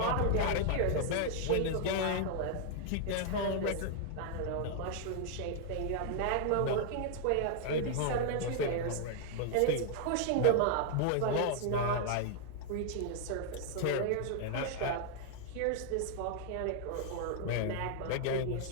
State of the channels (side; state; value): both; different; correlation 0.00